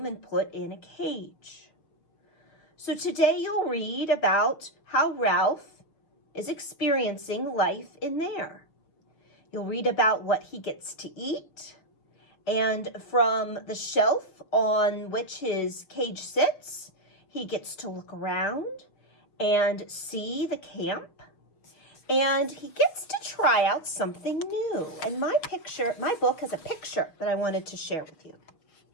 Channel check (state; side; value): late; right; 6.1 ms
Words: and put in a cage. So today you'll read about how Ralph is experiencing life in there. You'll read about what he gets to eat, and from the shelf on which his cage sits, he gets to look around and see the camp. And he gets to try out something new. And my book has a picture that I wanted to share with you.